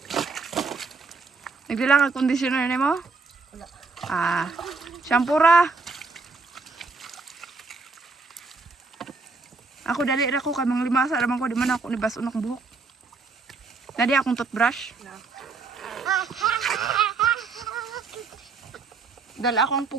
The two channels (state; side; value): quieter; left; 4.2 dB